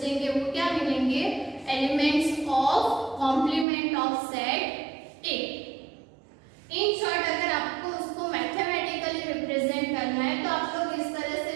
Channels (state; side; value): drops out; left; at 3.7 s